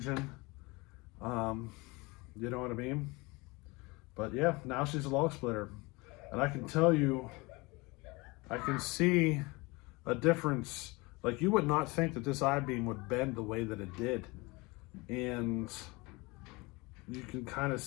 You know what I mean? But yeah, now she's a log splitter. And I can tell you, I can see a difference. Like, you would not think that this I-beam would bend the way that it did. And you can kind of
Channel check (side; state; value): right; quieter; 24.8 dB